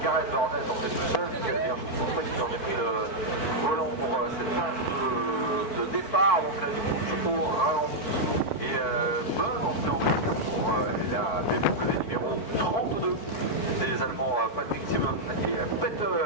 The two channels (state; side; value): late; right; 4.5 ms